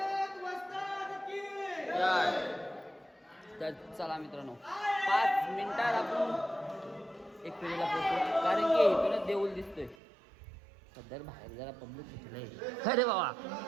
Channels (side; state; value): left; drops out; at 10.0 s